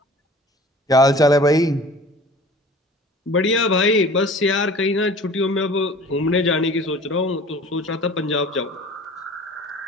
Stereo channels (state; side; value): normal; both; correlation 0.44